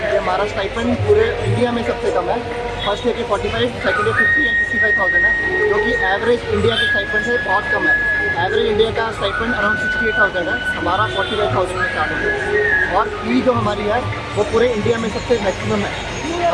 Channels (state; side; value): identical; both; correlation 1.00